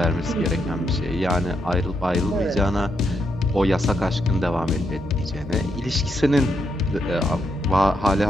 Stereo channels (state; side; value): normal; both; correlation 0.80